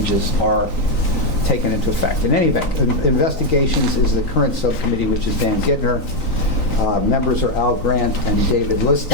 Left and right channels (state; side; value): late; right; 3.9 ms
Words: are taken into effect. In any event, investigations is the current subcommittee, which is Dan Gittner. Members are Al Grant and David